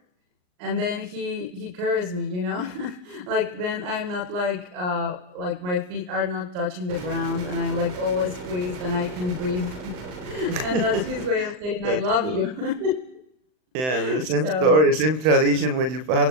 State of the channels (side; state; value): left; late; 39 ms